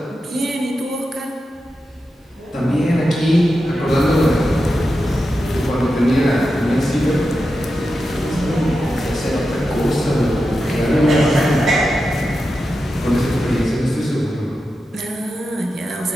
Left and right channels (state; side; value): normal; both; correlation 0.90